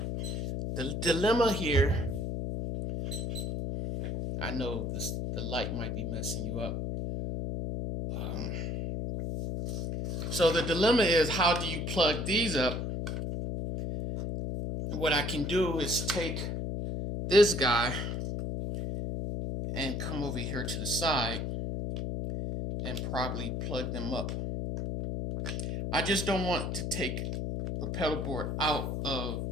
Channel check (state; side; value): noise; left; hum, 2 dB below the sound